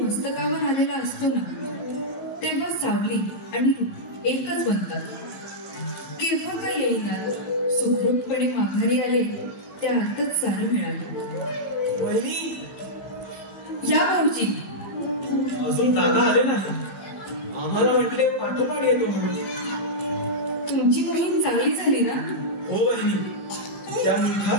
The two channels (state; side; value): late; right; 15 ms